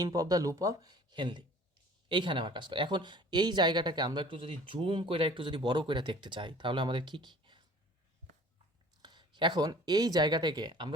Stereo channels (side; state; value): both; normal; correlation 0.48